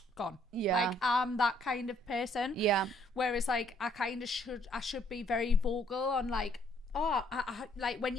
gone. Yeah. Like, I'm that kind of person. Yeah. Whereas, like, I should be very vocal on, like, oh, I like, when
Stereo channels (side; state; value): both; normal; correlation 0.66